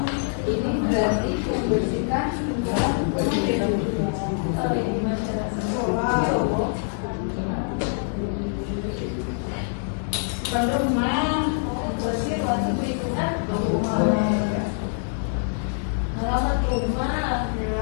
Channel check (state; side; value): silent; right; 62 dB below the other